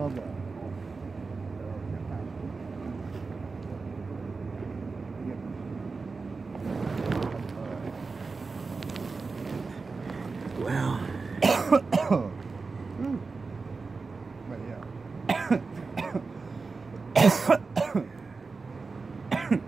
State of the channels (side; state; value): left; quieter; 4.3 dB